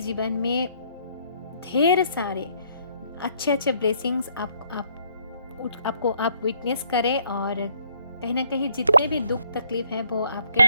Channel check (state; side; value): inverted; both; correlation -0.67